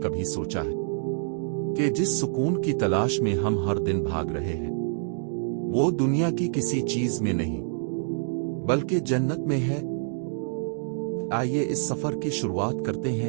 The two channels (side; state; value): left; silent; digital silence